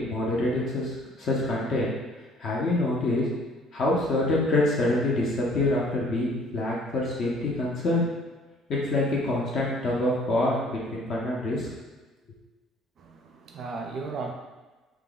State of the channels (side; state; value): both; normal; correlation 0.56